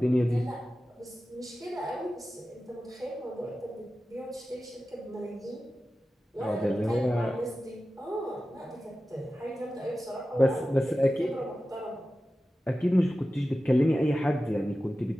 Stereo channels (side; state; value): both; normal; correlation 0.94